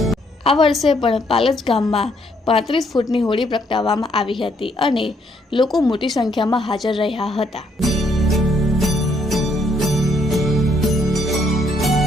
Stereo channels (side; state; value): both; normal; correlation 0.71